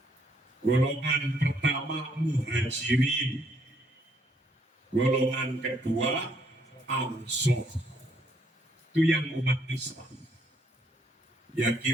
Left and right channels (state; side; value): normal; both; correlation 0.69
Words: Golongan pertama Muhajirin. Golongan kedua Ansor. Itu yang umat Islam. Ya